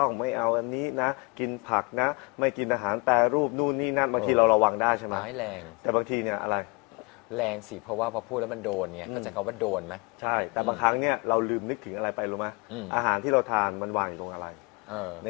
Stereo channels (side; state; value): right; quieter; 30.4 dB